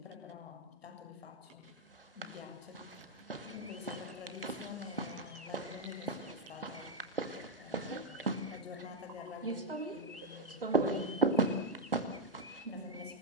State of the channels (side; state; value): both; normal; correlation 0.03